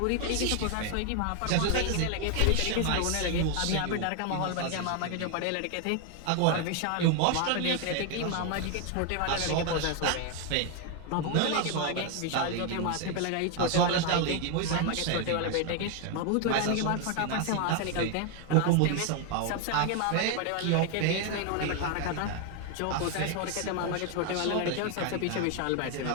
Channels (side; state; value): both; different; correlation 0.01